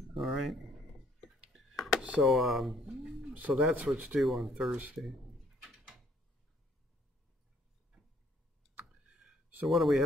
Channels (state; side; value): normal; both; correlation 0.63